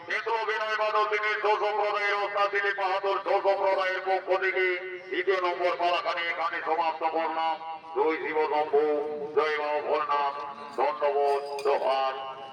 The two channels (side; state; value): both; identical; correlation 1.00